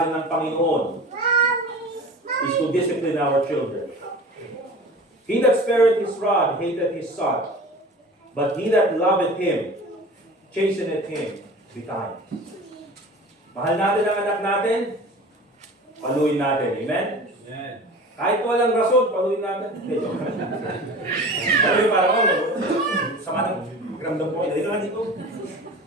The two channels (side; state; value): both; normal; correlation 0.38